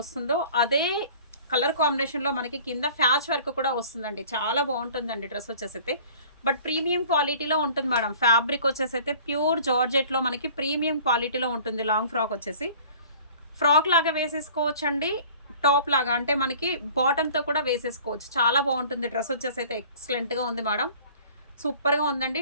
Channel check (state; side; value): inverted; both; correlation -0.48